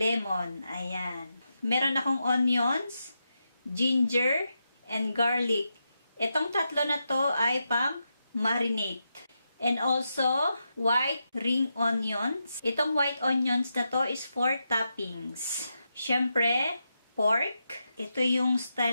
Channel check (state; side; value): inverted; both; correlation -0.86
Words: Ayan. Meron akong onions, ginger, and garlic. Itong tatlo na to ay pang marinate. And also, white ring onions. Itong white onions na to is for toppings. Siyempre, pork. Ito yung